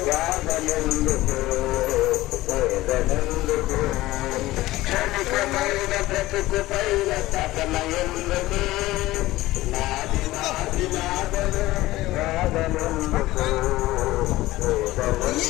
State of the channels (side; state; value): right; quieter; 17.5 dB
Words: గాదనెందుకు వేదనెందుకు క్షణికమైన బ్రతుకు పైన తపన ఎందుకు నాది నాది నాదనే గాదనెందుకు